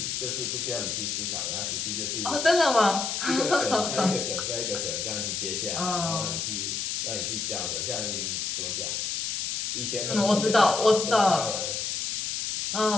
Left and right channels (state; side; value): noise; left; hiss, 1 dB below the sound